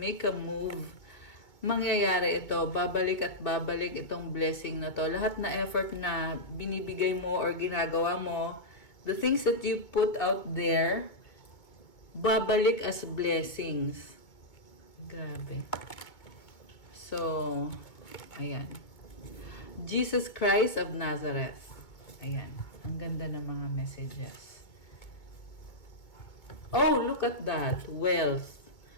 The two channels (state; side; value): late; right; 2.2 ms